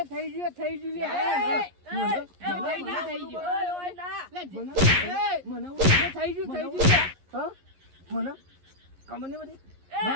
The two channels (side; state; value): left; late; 11 ms